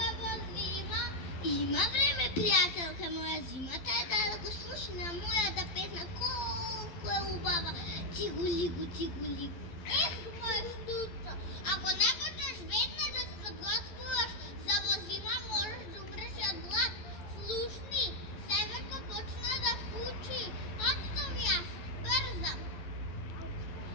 во зима? Има време, пријателка моја, зимата е да го слушна мојата песна, колку е убава. Цигулигу, цигулигу. Ех, мој Турчо, ако не почнеш веднаш да се подготвуваш за во зима, можеш да умреш од глад. Слушни, северко почна да фучи. Отстав јас, брзам.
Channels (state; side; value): late; right; 12 ms